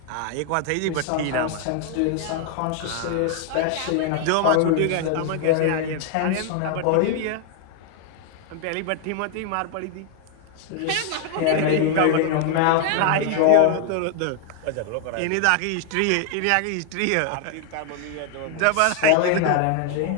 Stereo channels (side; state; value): both; different; correlation 0.00